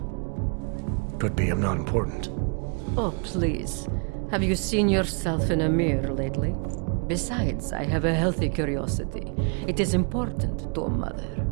Could be I'm not important. Oh, please. Have you seen yourself in a mirror lately? Besides, I have a healthy curiosity. It is important to a mother.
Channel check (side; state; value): left; quieter; 39.1 dB